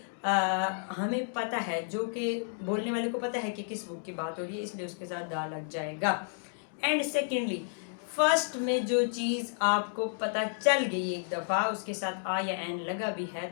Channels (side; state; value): right; silent; digital silence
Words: हमें पता है, जो कि बोलने वाले को पता है कि किस बुक की बात हो रही है, इसलिए उसके साथ द लग जाएगा। एंड सेकेंडली, फर्स्ट में जो चीज़ आपको पता चल गई एक दफ़ा, उसके साथ आ या एन लगा भी है,